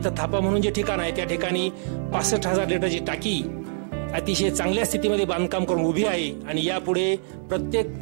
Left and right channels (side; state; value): left; silent; 62 dB below the other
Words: थापा म्हणून जे ठिकाण आहे त्या ठिकाणी 65,000 लिटरची टाकी अतिशय चांगल्या स्थितीमध्ये बांधकाम करून उभी आहे. आणि यापुढे प्रत्येक